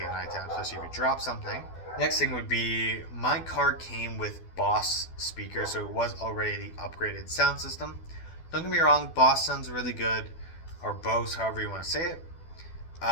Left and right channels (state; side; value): late; right; 12 ms